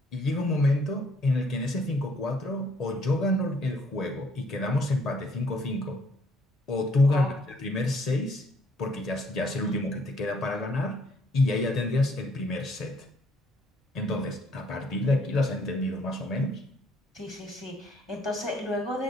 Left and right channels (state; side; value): normal; both; correlation 0.65